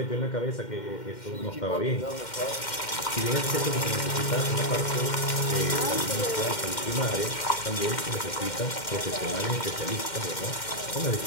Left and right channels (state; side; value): late; right; 2.1 ms